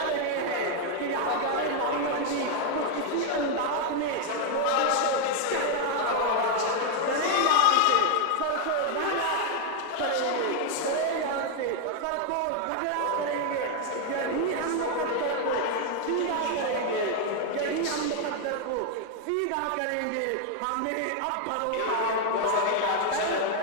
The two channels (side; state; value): both; different; correlation 0.01